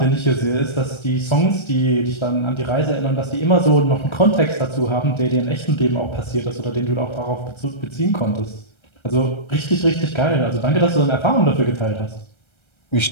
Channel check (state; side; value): late; right; 1.3 ms